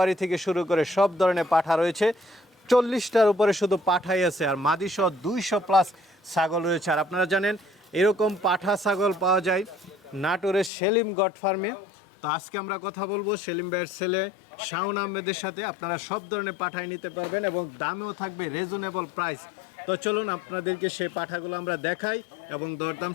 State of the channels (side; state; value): right; drops out; at 10.7 s